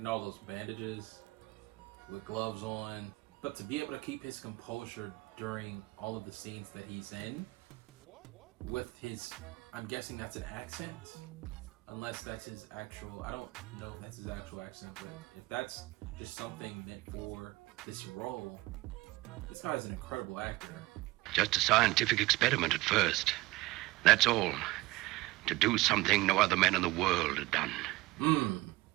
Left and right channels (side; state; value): left; quieter; 20.1 dB